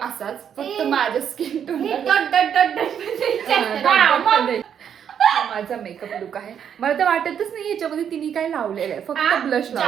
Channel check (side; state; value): left; quieter; 8.4 dB